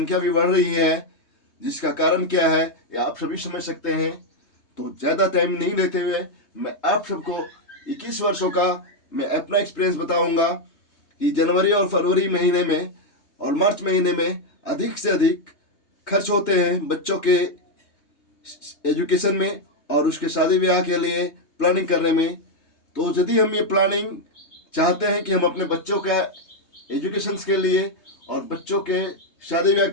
भी बढ़ रही है। जिसका कारण क्या है ये आप सभी समझ सकते हैं। तो ज़्यादा टाइम नहीं लेते हुए मैं आप सबको 21 वर्षों का मैं अपना एक्सपीरियंस बताऊंगा कि जनवरी और फरवरी महीने में और मार्च महीने में अधिक से अधिक खर्च होते हैं बच्चों के एजुकेशन में और उसके शादी ब्याह के लिए प्लानिंग करने में। तो यदि हम ये प्लानिंग चाहते हैं कि हम अपने बच्चों का एजुकेशन के लिए और बच्चों के शादी ब्याह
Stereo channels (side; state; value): right; late; 3.2 ms